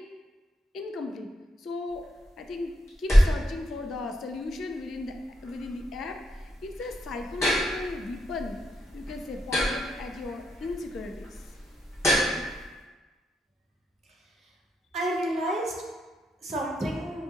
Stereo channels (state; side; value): normal; both; correlation 0.80